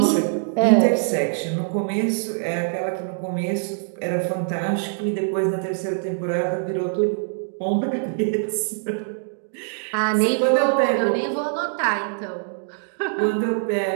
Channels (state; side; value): silent; left; digital silence